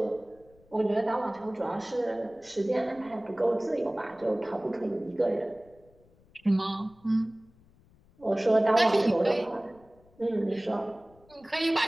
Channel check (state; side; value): noise; left; rumble, 29 dB below the sound